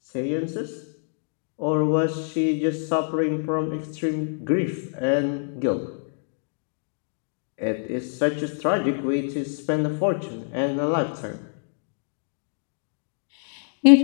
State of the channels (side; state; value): right; silent; digital silence